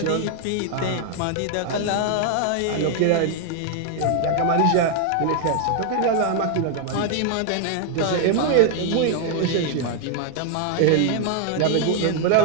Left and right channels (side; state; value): both; different; correlation 0.00